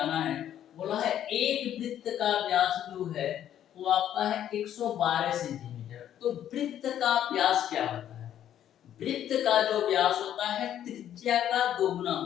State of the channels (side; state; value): right; quieter; 10.7 dB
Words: है। बोला है एक वृत्त का व्यास जो है वो आपका है 112 सेंटीमीटर। तो वृत्त का व्यास क्या होता है, वृत्त का जो व्यास होता है त्रिज्या का दोगुना